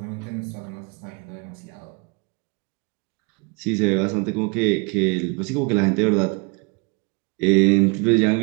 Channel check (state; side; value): quieter; left; 31.6 dB